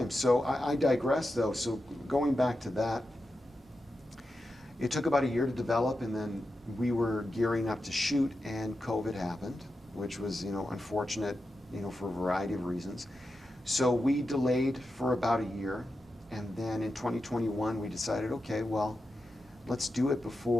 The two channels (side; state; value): both; normal; correlation 0.89